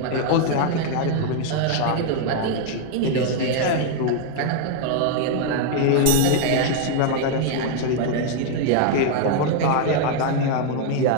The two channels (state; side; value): different; both; correlation 0.00